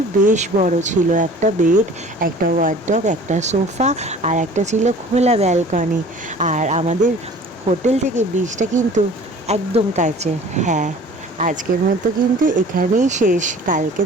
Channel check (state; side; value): normal; both; correlation 0.46